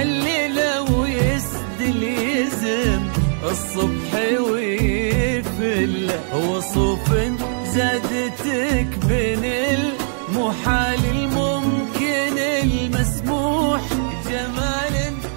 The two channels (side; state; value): left; silent; digital silence